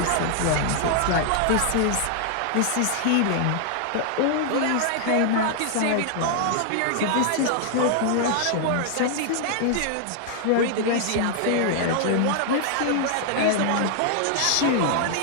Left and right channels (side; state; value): both; different; correlation -0.01